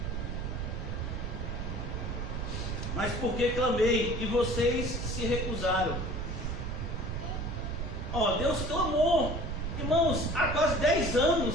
Mas porque clamei e vocês se recusaram. Deus clamou. Irmãos, há quase 10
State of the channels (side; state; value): right; noise; rumble, 3 dB below the sound